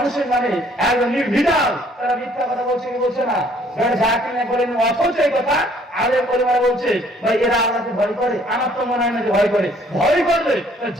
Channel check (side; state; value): both; normal; correlation 0.61